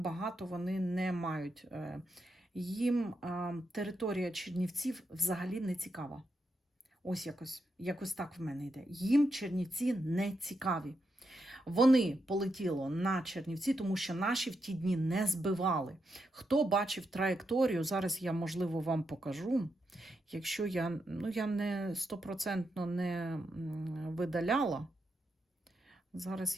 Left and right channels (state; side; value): normal; both; correlation 0.84